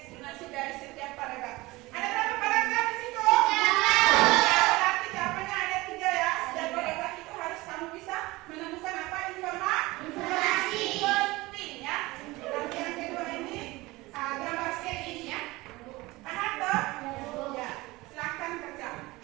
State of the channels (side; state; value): left; quieter; 20.9 dB